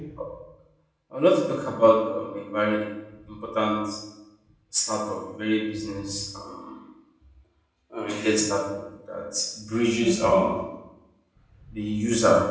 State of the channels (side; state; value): both; identical; correlation 1.00